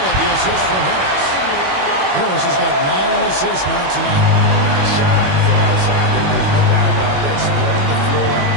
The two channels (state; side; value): late; left; 21 ms